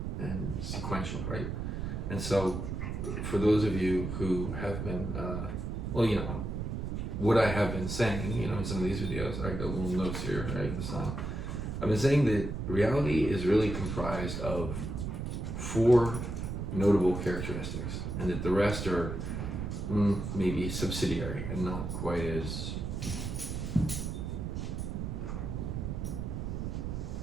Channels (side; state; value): right; noise; rumble, 4 dB below the sound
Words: and sequential, right? And so for those of you who have been, well, you know, what I have been saying, you know, in some of these videos, I got little notes here, right, this time. I've been saying that reality is really comprised of 4 notable characteristics, and that the rest are maybe subsidiary and not quite as